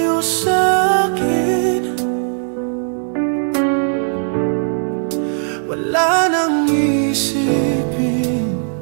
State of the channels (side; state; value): left; silent; digital silence